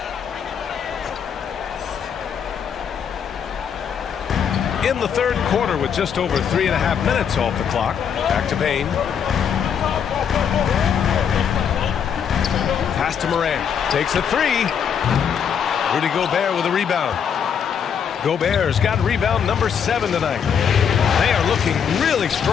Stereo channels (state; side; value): quieter; right; 7.6 dB